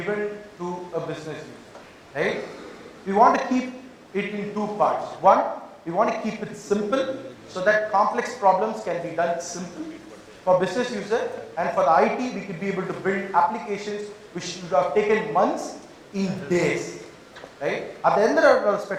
to a business user, right? We want to keep it in two parts. One, we want to keep it simple so that complex problems can be done simple for business user, and for the IT, we could be able to build applications which should have taken months in days, right? At the end of the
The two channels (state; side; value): identical; both; correlation 1.00